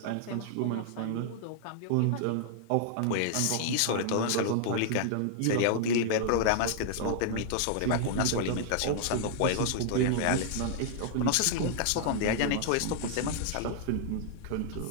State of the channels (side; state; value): both; different; correlation -0.01